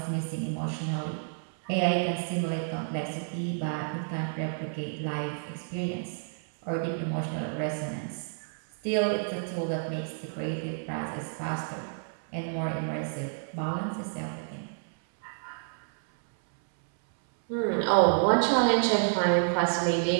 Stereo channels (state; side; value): silent; left; 58 dB below the other